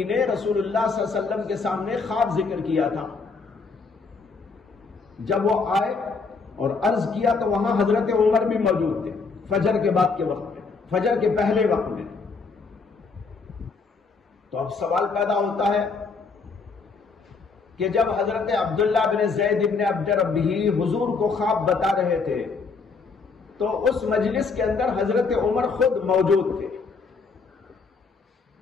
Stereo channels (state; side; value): quieter; right; 4.6 dB